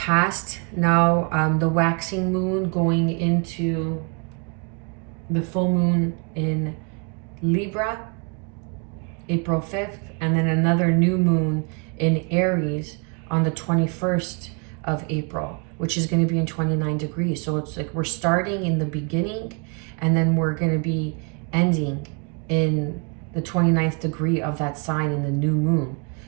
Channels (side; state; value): left; quieter; 34.8 dB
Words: Now the waxing moon going into the full moon in Libra, April 5th, and then another new moon in Aries on the 21st of April, which is going to be in 29 degrees. So it's like we're starting in the beginning and then we're going to be ending in the 29th degree of that sign in the new moon.